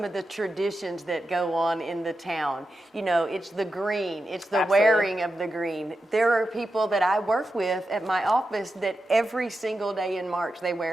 of the traditions that go on in the town. You know, it's the green, it's the Absolutely. wearing of the green. There are people that I work with at my office that every single day in March they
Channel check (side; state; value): both; normal; correlation 0.89